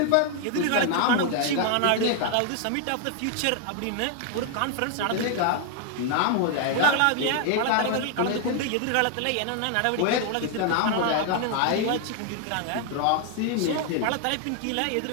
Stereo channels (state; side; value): different; both; correlation 0.00